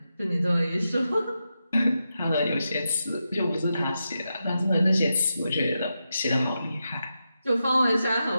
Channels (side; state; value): both; inverted; correlation -0.88